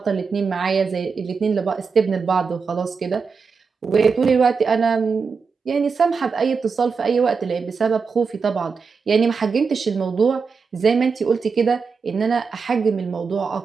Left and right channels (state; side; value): quieter; left; 5.2 dB